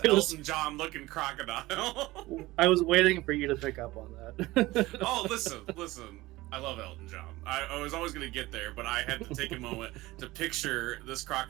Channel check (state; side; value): quieter; left; 19.1 dB